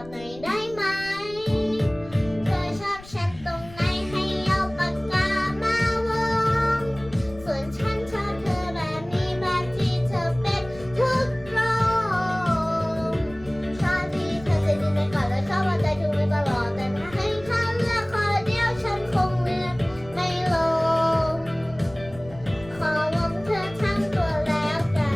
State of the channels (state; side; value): noise; left; rumble, 19 dB below the sound